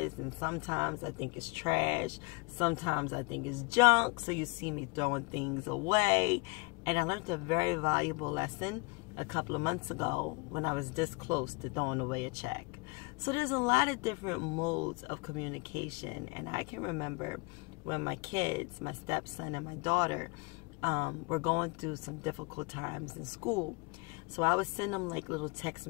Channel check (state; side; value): quieter; right; 28.9 dB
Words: and sometimes I think it's trash, sometimes I think it's junk, so you see me throwing things away. And I learned a very valuable lesson a couple of months ago when I was this close to throwing away a check. So there's a lot of different modes of communication, and I can remember when my kids, my stepson and my daughter, were going through some difficult times in school. So I would send them like little text